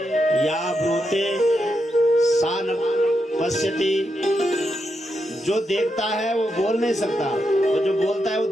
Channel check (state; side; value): normal; both; correlation 0.84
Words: या ब्रूते सा न पश्यति। जो देखता है वो बोल नहीं सकता, और जो बोलता है वो